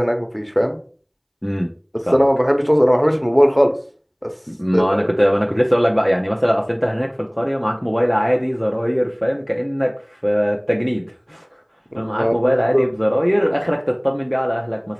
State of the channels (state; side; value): identical; both; correlation 1.00